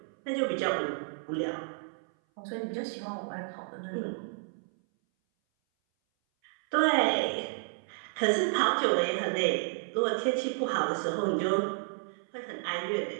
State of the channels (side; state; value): left; silent; 57 dB below the other